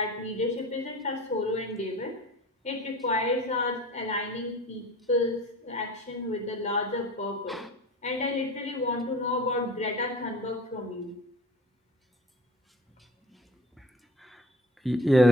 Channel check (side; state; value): both; normal; correlation 0.39